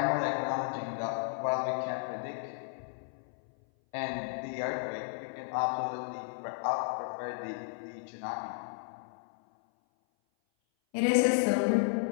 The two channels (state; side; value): silent; right; 56 dB below the other